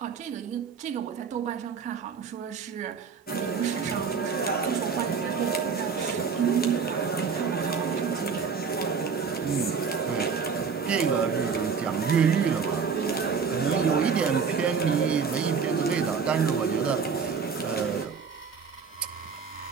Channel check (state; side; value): quieter; left; 6.0 dB